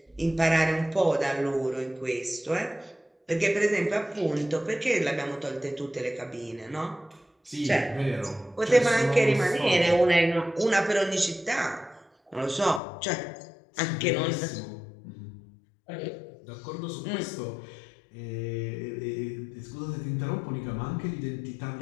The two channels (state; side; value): drops out; right; at 12.8 s